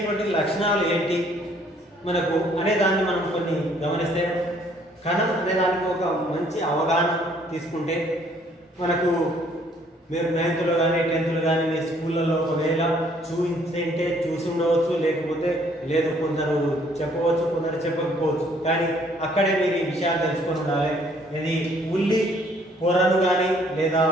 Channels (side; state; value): both; normal; correlation 0.62